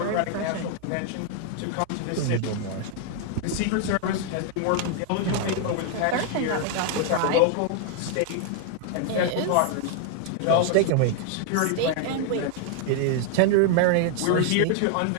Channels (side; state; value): both; different; correlation 0.00